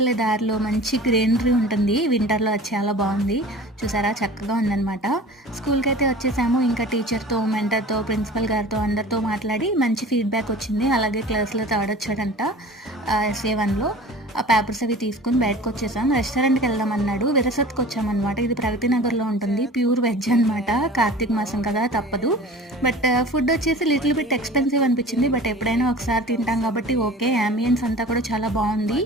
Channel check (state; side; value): normal; both; correlation 0.41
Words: దారిలో మంచి గ్రీనరీ ఉంటుంది. వింటర్‌లో అది చాలా బావుంది. చూసారా చక్కగా ఉందనమాట. స్కూల్‌కైతే వచ్చేసాము. ఇంకా టీచర్‌తో, మెంటర్‌తో, ప్రిన్సిపల్ గారితో అందరితో మాట్లాడి మంచి ఫీడ్‌బ్యాక్ వచ్చింది. అలాగే క్లాస్‌లో థర్డ్ వచ్చాడంట ఎస్ఏ 1లో. ఆ పేపర్స్ అవి తీసుకొని బయటకొచ్చేసాం. రెస్టారెంట్‌కి వెళ్దామన్నాడు. విరసత్‌కొచ్చామనమాట. ఇది ప్రగతి నగర్‌లో ఉంటుంది. ప్యూర్ వెజ్ అనమాట. కార్తీక మాసం కదా తప్పదు. బట్ ఫుడ్ వచ్చేసి లిటిల్ బిట్ ఎక్స్‌పెన్సివ్ అనిపించింది. బట్ ఎప్పుడైనా ఒకసారి తింటాం కాబట్టి ఓకే. యాంబియన్స్ అంతా కూడా చాలా బావుంది.